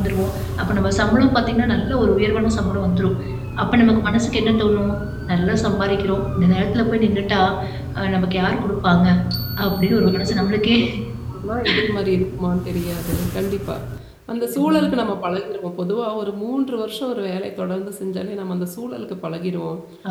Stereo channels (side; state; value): both; identical; correlation 1.00